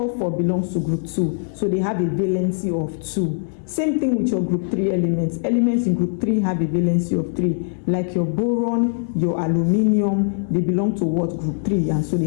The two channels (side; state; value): right; silent; digital silence